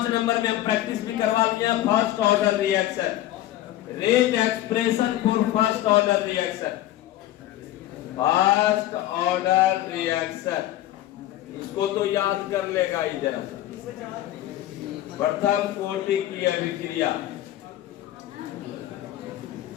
नंबर में हम प्रैक्टिस भी करवा लिया, first order reaction, rate expression for first order reaction, first order reaction. इसको तो याद कर लेगा ही जरा सा। प्रथम कोटि की अभिक्रिया,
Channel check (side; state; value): right; quieter; 14.0 dB